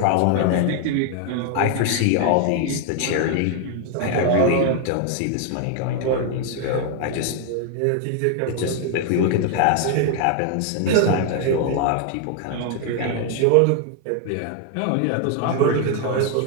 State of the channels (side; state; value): both; different; correlation 0.00